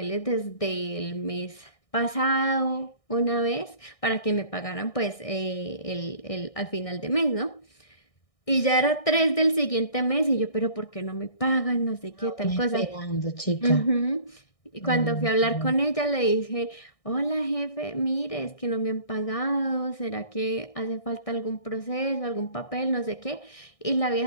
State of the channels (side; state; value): right; late; 1.6 ms